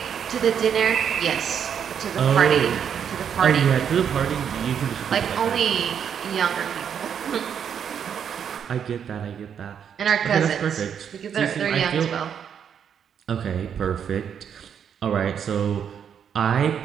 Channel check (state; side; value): quieter; left; 8.1 dB